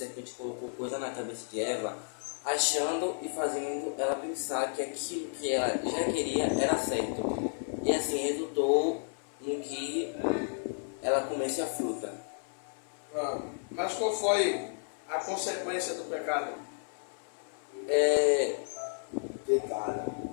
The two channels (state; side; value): silent; right; 56 dB below the other